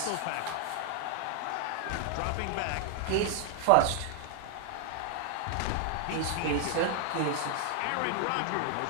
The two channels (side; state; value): both; different; correlation 0.00